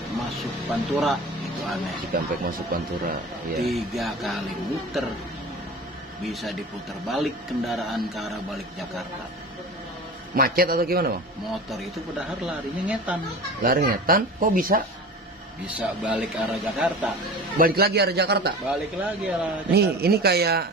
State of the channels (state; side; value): normal; both; correlation 0.35